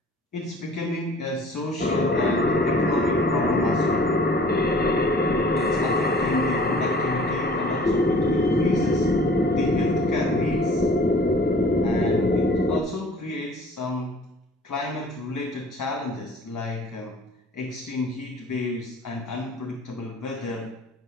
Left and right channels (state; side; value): normal; both; correlation 0.49